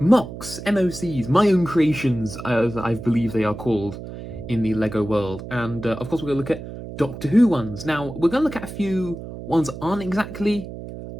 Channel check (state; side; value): noise; right; hum, 11 dB below the sound